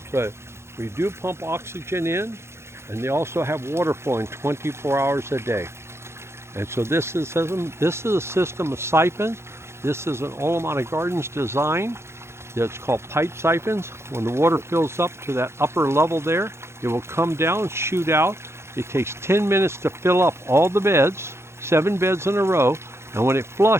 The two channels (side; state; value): left; late; 0.13 ms